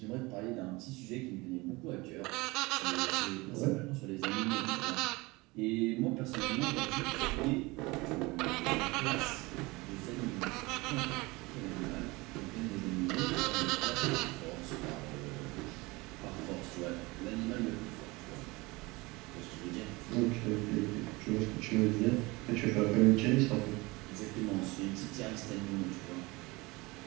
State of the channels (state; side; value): quieter; left; 23.4 dB